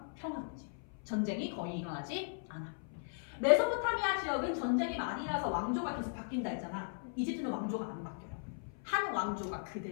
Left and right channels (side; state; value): right; silent; 53 dB below the other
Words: 평화롭지. 전쟁이 거의 일어나지 않아. 메소포타미아 지역은 전쟁이 많이 일어나서 왕조가 계속 바뀐다 했잖아. 이집트는 왕조가 안 바뀌어요. 한 왕조가